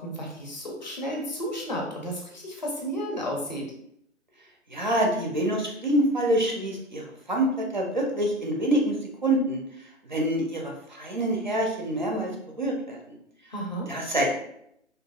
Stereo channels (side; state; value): both; normal; correlation 0.32